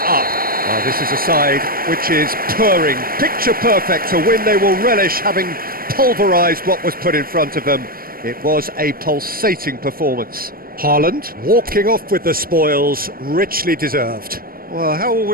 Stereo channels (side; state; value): left; late; 0.43 ms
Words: up. Well, this is a side which is purring, picture perfect, a win they will relish, having pulverised what was put in front of them. It was a pulsating performance. Haaland walking off with the spoils, richly deserved. Well, how will